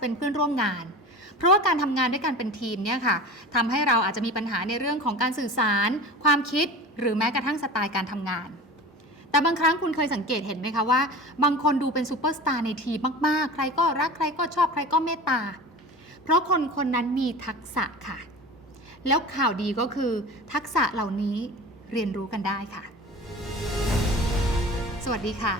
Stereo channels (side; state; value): both; normal; correlation 0.35